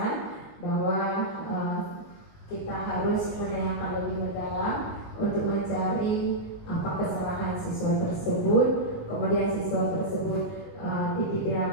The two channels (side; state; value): right; late; 19 ms